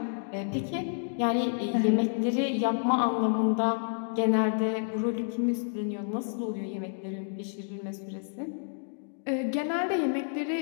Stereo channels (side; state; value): right; silent; digital silence